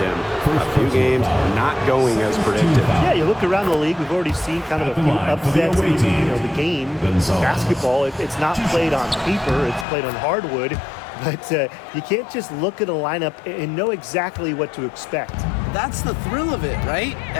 A few games not going as predicted. Yeah, you look around the league, we've already seen kind of a few upsets in the game. Basketball, it's not played on paper, it's played on hardwood. But you can't just look at a lineup and know exactly what to expect. That's the thrill of it, right?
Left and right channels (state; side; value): drops out; right; at 9.9 s